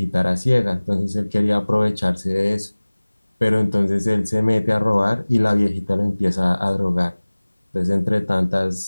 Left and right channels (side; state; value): both; inverted; correlation -1.00